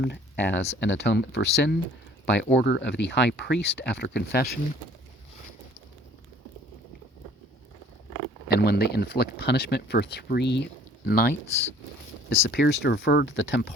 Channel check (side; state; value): both; normal; correlation 0.54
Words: as an atonement for sin by order of the high priest after confession, and when they inflict punishment for 3 nights. This appears to refer to the